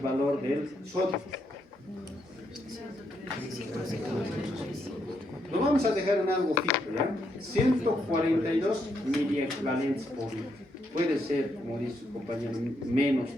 del sodio? Lo vamos a dejar en algo fijo, ¿ya? 142 miliequivalentes por litro. Puede ser, como dice su compañero, menos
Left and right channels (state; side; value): normal; both; correlation 0.78